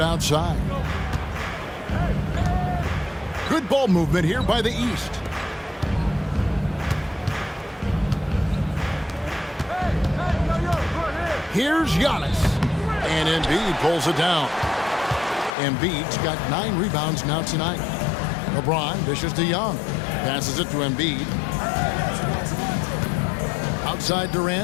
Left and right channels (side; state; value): right; drops out; at 15.6 s